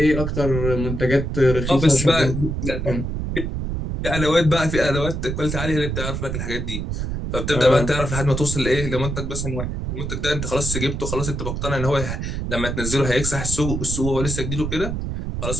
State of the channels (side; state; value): right; noise; rumble, 3 dB below the sound